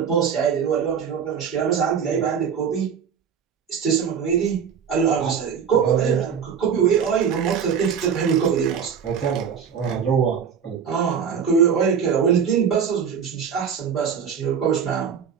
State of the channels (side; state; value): left; quieter; 7.2 dB